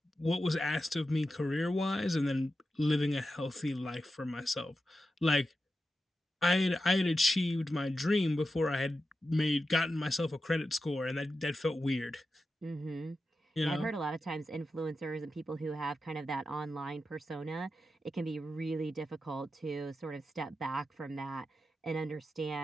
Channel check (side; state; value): both; normal; correlation 0.90